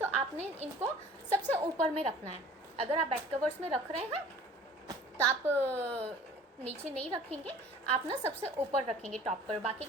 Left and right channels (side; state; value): both; normal; correlation 0.48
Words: आपने इनको सबसे ऊपर में रखना है। अगर आप बेड कवर्स में रख रहे हैं तो आप नीचे नहीं रखेंगे, आप ना सबसे ऊपर रखेंगे टॉप पर। बाकी